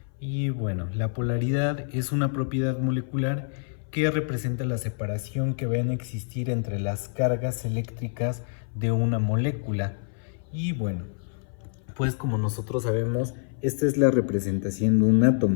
Y bueno, la polaridad es una propiedad molecular que representa la separación que va a existir entre las cargas eléctricas de una molécula. Y bueno, pues como nosotros sabemos, esta es la representación de un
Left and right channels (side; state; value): right; silent; 58 dB below the other